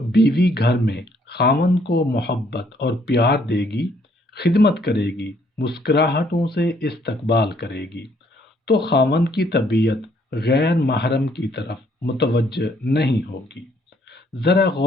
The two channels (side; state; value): both; normal; correlation 0.67